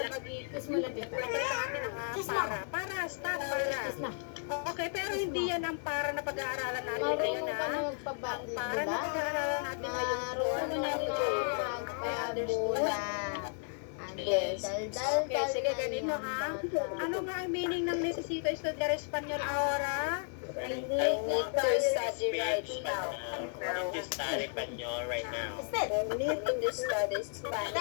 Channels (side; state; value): right; silent; 55 dB below the other